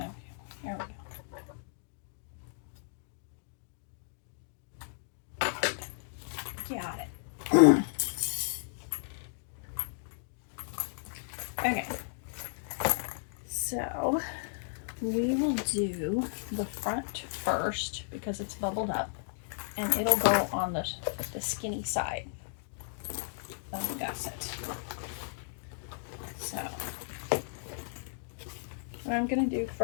here we go. Got it. Okay. So we will do the front first because it's bubbled up, and it'll go on the skinny side of the gusset. So what I'm going to do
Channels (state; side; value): silent; right; digital silence